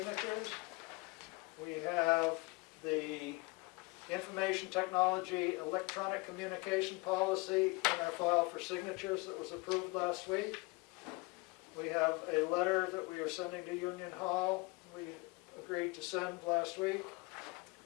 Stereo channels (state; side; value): quieter; right; 25.8 dB